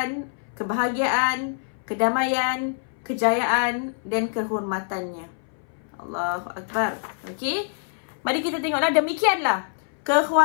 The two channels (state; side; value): silent; right; 61 dB below the other